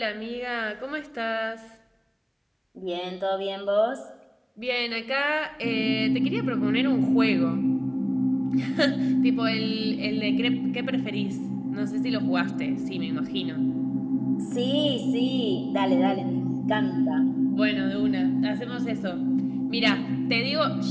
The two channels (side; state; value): both; identical; correlation 1.00